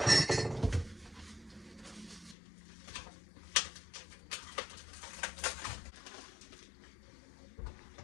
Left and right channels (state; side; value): drops out; right; at 2.4 s